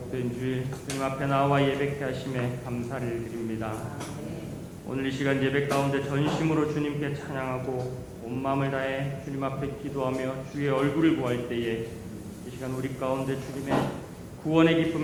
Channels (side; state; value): both; identical; correlation 1.00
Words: 주일 주님 앞에 나와 예배케 하심에 감사를 드립니다. 오늘 이 시간 예배 가운데 전심으로 주님께 찬양하고 온 마음을 다해 주님 앞에 기도하며 주의 얼굴을 구할 때에 이 시간 우리 가운데 주님의 구원의